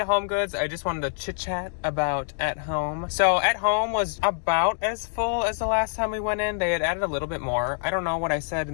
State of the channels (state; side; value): silent; right; digital silence